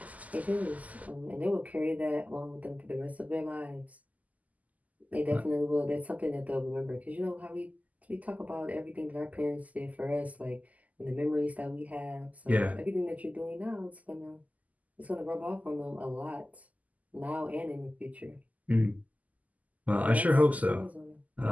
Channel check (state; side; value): late; left; 0.076 ms